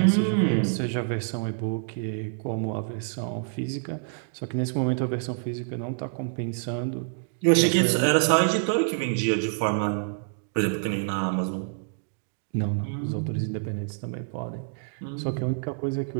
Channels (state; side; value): silent; left; digital silence